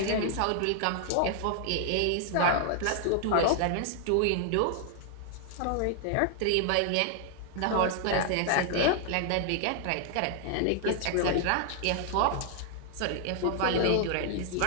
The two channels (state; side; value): different; both; correlation 0.00